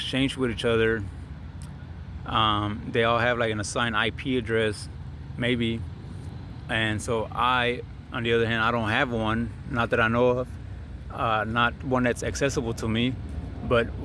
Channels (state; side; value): identical; both; correlation 1.00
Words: with each other. They all have like an assigned IP address, maybe, and so I, on the other hand, I don't have one, not that I know of, not one that's accessible to me. But